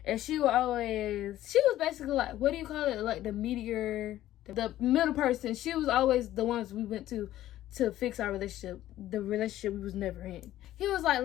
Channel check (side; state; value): right; quieter; 13.8 dB